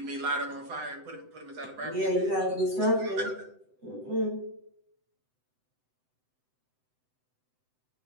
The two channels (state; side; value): late; left; 7.8 ms